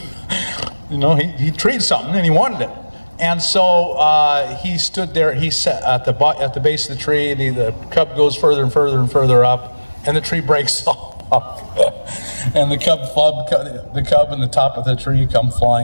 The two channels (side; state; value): both; inverted; correlation -1.00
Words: something, and he wanted it. And so he stood there. He sat at the base of the tree. The cub goes further and further and further up, and the tree breaks off. And the cub and the top of the tree come